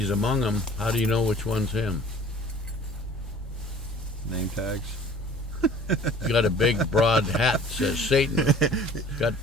among them. How do you know which one's him? Name tags. He's got a big broad hat that says Satan. Got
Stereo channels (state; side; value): normal; both; correlation 0.49